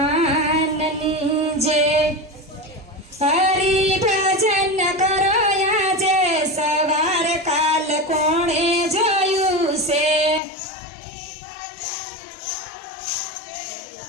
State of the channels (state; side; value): drops out; right; at 10.4 s